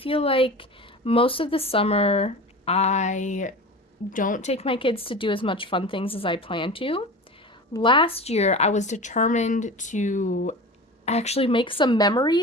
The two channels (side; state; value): both; normal; correlation 0.33